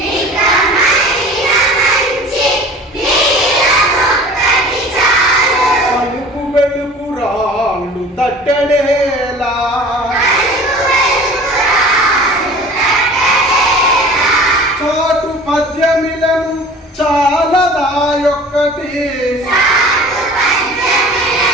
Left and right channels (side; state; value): both; normal; correlation 0.44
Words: అలుకు వెలుకు రాళ్ళు తట్టడేలా చాటు పద్యమిలను చాలదాయొక్కటి